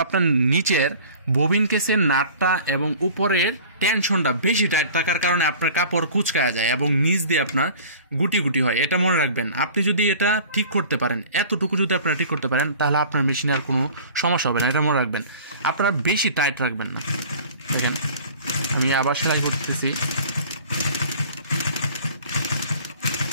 আপনার নিচের ববিন কেসের নাটটা এবং উপরের টেনশনটা বেশি টাইট থাকার কারণে আপনার কাপড় কুচকায়া যায় এবং নিচ দিয়ে আপনার গুটি গুটি হয়। এটা মনে রাখবেন। আপনি যদি এটা ঠিক করতে পারেন, এতটুকু যদি আপনারা ঠিক করতে পারেন, তাহলে আপনার মেশিনে আর কোনো সমস্যা হবে না। এটা মনে রাখবেন, আপনারা বেশি টাইট রাখবেন না। দেখেন আমি আবার সেলাই করতেছি।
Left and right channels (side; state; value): both; inverted; correlation -0.44